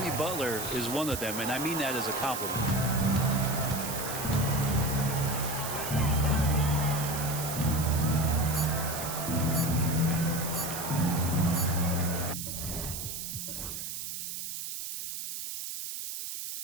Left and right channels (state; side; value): noise; right; hiss, 6 dB below the sound